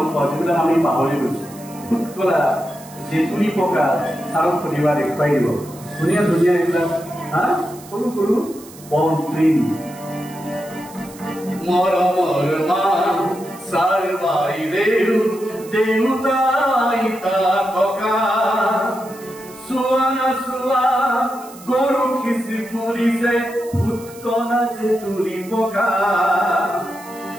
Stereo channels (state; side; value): noise; right; hiss, 20 dB below the sound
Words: পাওঁ যিবিলাক আমি পাহৰি গৈছো ভূত কলা জেতুলি পকা চাৰক সুধিবা দেখুৱাই দিব ধুনীয়া ধুনীয়া এইবিলাক সৰু সৰু বন ট্ৰেইন মৰমৰ মা চাৰ বাই দেউতাই তা ককা চুৱানা চুৱা গৰু খিচি ফুলিছে ভূত কলা যে তুলি পকা